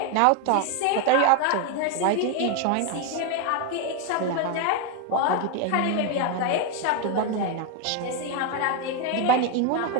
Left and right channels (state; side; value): different; both; correlation 0.02